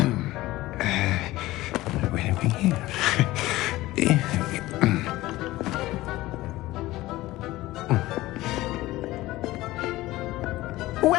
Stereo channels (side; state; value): right; quieter; 17.7 dB